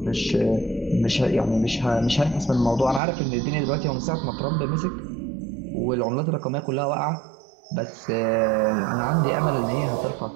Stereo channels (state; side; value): drops out; left; at 3.0 s